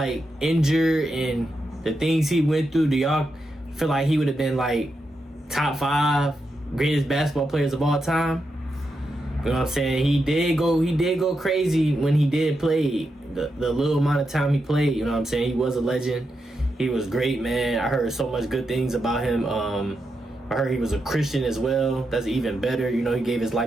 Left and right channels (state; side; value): normal; both; correlation 0.85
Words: injured and the things he went through, do y'all feel like he would have been like top 5 greatest basketball players of all time? You know what I'm saying? He did go crazy when he did play. The little amount of time he played, you know what I'm saying? He was a legend. He was great, man. I heard so much good things about him. I heard he was a Christian as well. That's even better. You know, he gave his